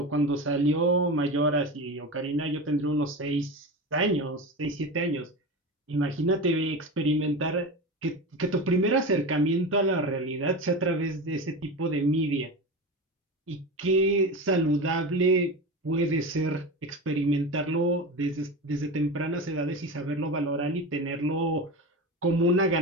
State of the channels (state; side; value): normal; both; correlation 0.25